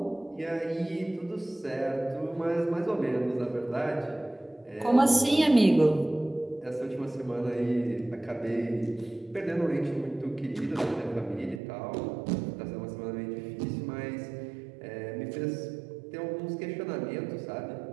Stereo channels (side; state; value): left; drops out; at 11.6 s